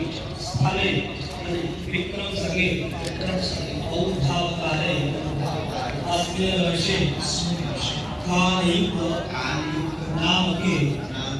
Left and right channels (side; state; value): both; identical; correlation 1.00